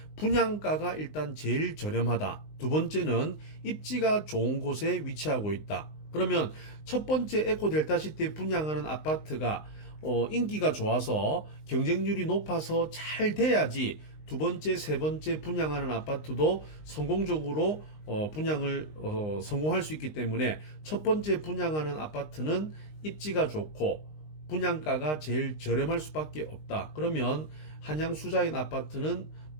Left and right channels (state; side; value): late; right; 19 ms